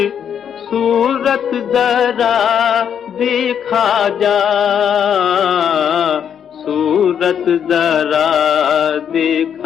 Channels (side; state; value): right; quieter; 8.4 dB